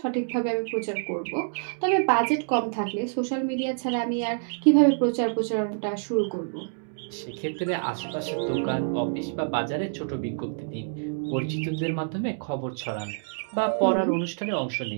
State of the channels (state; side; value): silent; left; digital silence